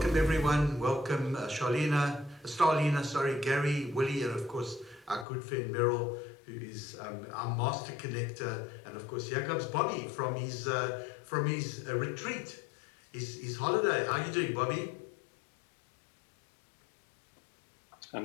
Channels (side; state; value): right; drops out; at 5.2 s